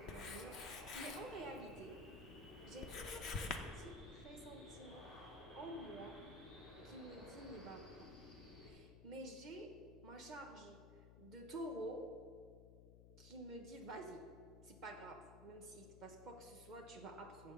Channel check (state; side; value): noise; left; hum, 12 dB below the sound